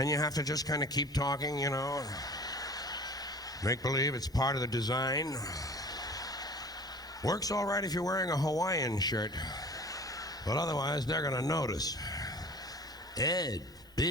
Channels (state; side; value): normal; both; correlation 0.43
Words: you have to just kind of keep talking, you know, make believe it's part of the design. Works all right if you're wearing a Hawaiian shirt, but otherwise they're gonna notice. Ed,